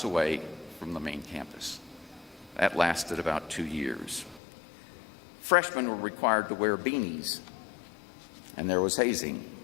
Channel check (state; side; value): drops out; right; at 4.4 s